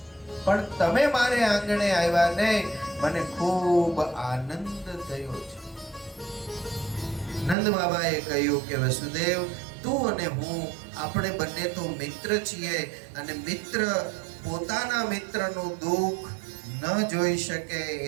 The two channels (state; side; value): drops out; left; at 7.6 s